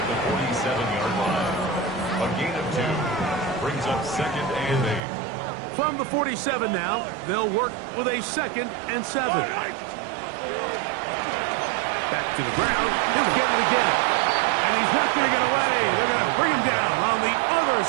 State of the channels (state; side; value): drops out; left; at 5.0 s